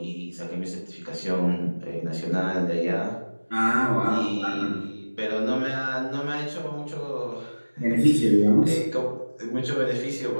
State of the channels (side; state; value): both; inverted; correlation -1.00